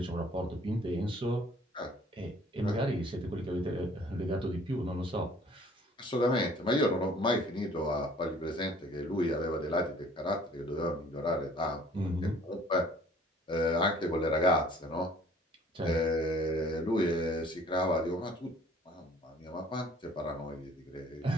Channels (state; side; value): normal; both; correlation 0.55